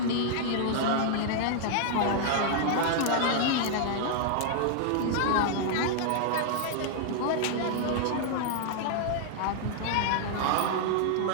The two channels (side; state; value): both; different; correlation 0.00